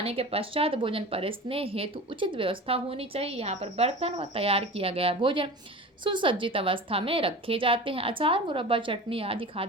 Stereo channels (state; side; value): normal; both; correlation 0.34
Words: के पश्चात भोजन परोसने हेतु उचित व्यवस्था होनी चाहिए। यहाँ पर बर्तन व तैयार किया गया भोजन सुसज्जित अवस्था में रखे जाते हैं। अचार, मुरब्बा, चटनी आदि